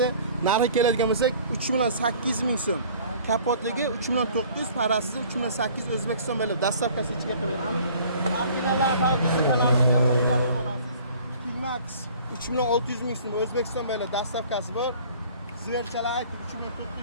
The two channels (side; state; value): both; inverted; correlation -0.50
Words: Narxi keladigan bo'lsak 3.800 ming so'm. Kapotligi 3.900, parasiz 3.800 O'zbekiston bo'ylab dastavkasi ichiga qilib beramiz. Originallar Max 3.600 ming so'm O'zbekiston bo'ylab dastavkasi bor. Ziverchalar